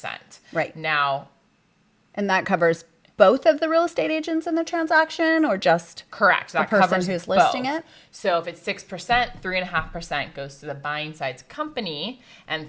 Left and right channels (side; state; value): both; identical; correlation 1.00